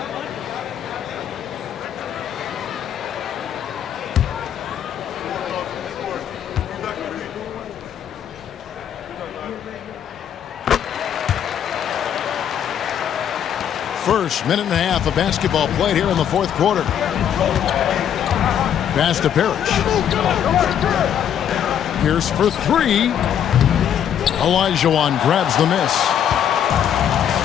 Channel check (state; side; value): quieter; right; 9.4 dB